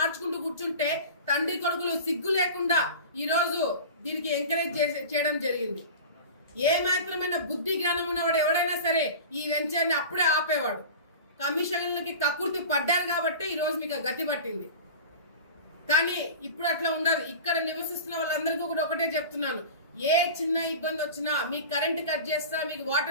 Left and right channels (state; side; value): inverted; both; correlation -0.34